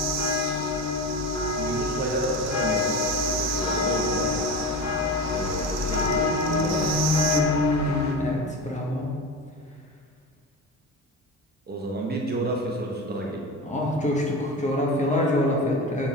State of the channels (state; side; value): normal; both; correlation 0.26